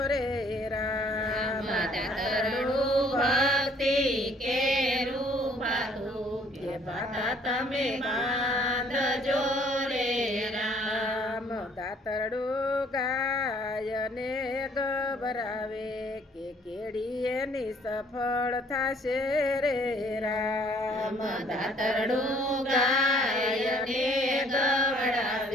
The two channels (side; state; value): both; normal; correlation 0.60